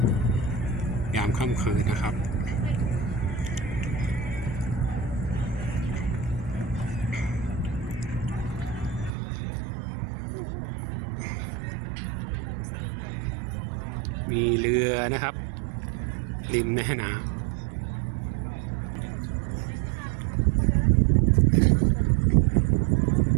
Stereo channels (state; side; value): drops out; left; at 9.1 s